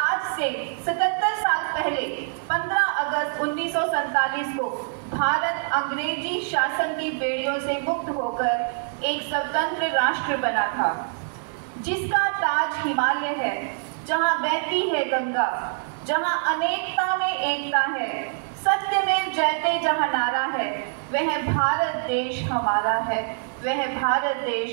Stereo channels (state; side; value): silent; left; digital silence